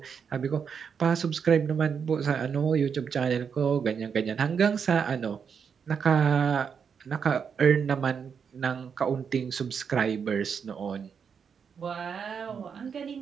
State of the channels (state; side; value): quieter; left; 6.7 dB